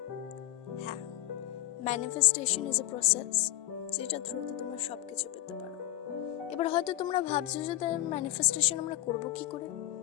হ্যাঁ, ম্যানিফেস্টেশন ইজ এ প্রসেস যেটা থ্রুতে তোমরা সব কিছু পেতে পারো। এবার হয়তো তোমরা ভাবছো যে ম্যানিফেস্টেশন আমরা করবো কি করে,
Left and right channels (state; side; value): quieter; right; 14.8 dB